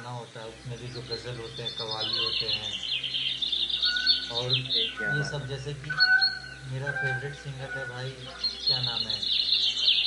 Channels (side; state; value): both; identical; correlation 1.00